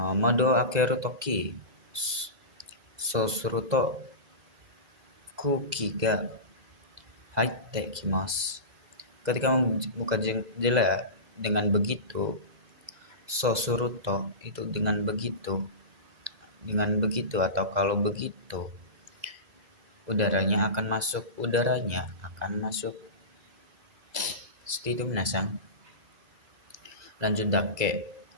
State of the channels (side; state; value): left; late; 2.0 ms